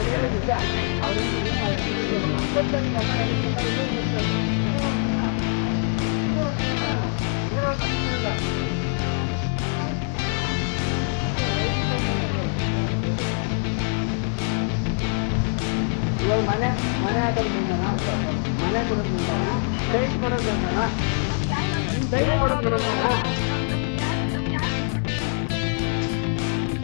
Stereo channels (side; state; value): right; silent; 56 dB below the other